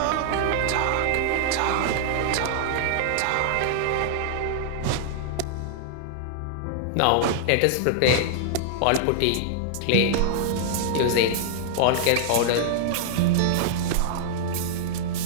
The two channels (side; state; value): both; different; correlation -0.01